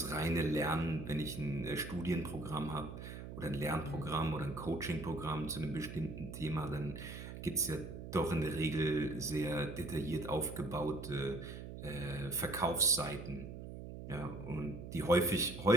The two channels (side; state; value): right; noise; hum, 10 dB below the sound